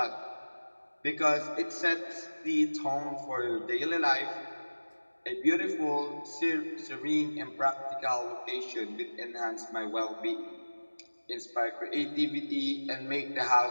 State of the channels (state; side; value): inverted; both; correlation -1.00